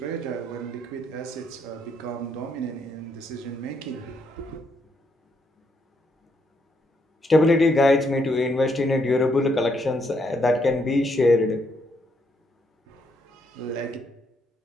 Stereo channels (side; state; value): both; normal; correlation 0.75